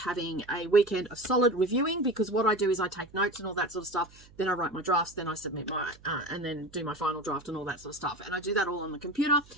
a weekend of solid reviewing, because what I do is I take notes and all that sort of stuff, then I write my drafts, then I submit my and then do my final draft and all that sort of stuff, and I do that all on the computer.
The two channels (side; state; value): right; noise; hum, 24 dB below the sound